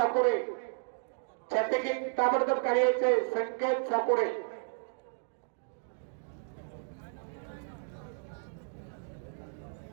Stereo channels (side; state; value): left; silent; digital silence